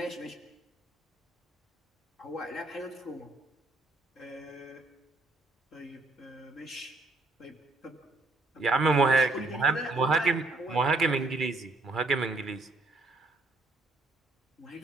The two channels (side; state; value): left; quieter; 3.2 dB